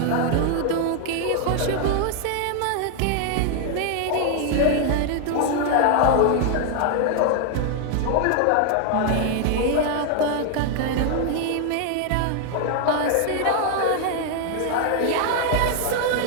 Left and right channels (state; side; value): different; both; correlation 0.00